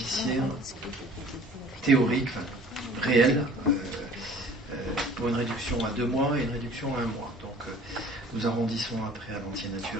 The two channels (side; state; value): both; normal; correlation 0.49